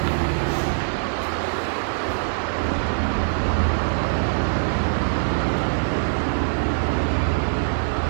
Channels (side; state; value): left; silent; digital silence